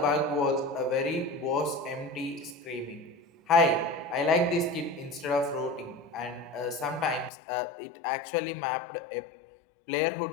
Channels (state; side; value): drops out; right; at 7.3 s